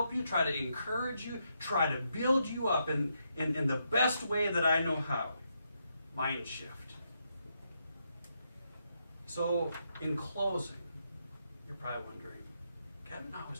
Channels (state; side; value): inverted; both; correlation -0.80